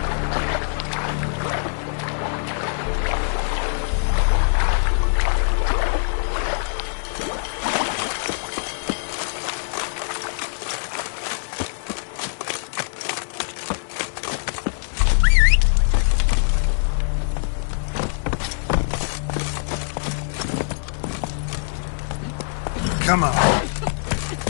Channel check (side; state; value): right; silent; digital silence